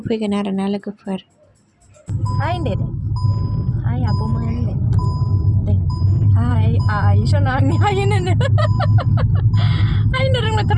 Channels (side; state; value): both; identical; correlation 1.00